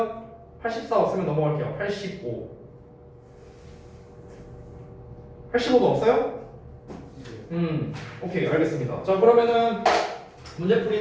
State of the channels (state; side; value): identical; both; correlation 1.00